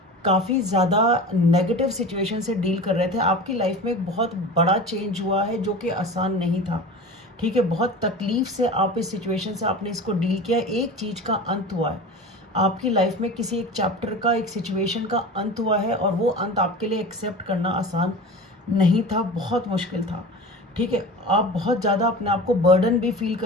काफ़ी ज़्यादा नेगेटिव सिचुएशन से डील कर रहे थे। आपकी लाइफ में एक बहुत बड़ा चेंज हुआ है जो कि आसान नहीं था। ठीक है, बहुत तकलीफ से आप इस सिचुएशन से आपने इसको डील किया। एक चीज़ का अंत हुआ है आपकी लाइफ में, किसी एक चैप्टर का, एक सिचुएशन का अंत हुआ है, और वो अंत आपके लिए एक्सेप्ट करना आसान नहीं था, बहुत मुश्किल था। ठीक है, आप बहुत ज़्यादा अपने आप को बर्डन भी फील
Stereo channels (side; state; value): both; normal; correlation 0.33